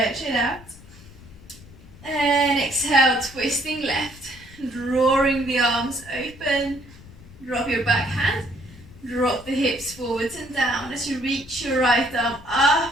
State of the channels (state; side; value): noise; left; rumble, 20 dB below the sound